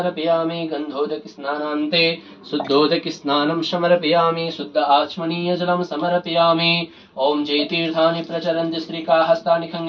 गन्धोदकस्नानान्ते शुद्धोदकस्नानं समर्पयामि। शुद्ध आचमनीयजलं समर्पयामि। ॐ जयतीर्थानि प्रचरन्ति स्त्रीका हस्तानि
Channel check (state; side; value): identical; both; correlation 1.00